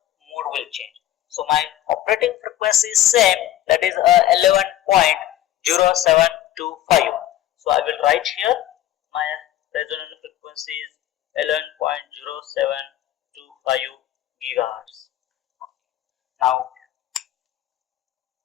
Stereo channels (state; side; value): quieter; right; 13.1 dB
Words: mode will change. So my operating frequency is same, that is 11.0725. So I will write here my resonance frequency is 11.0725 gigahertz. Now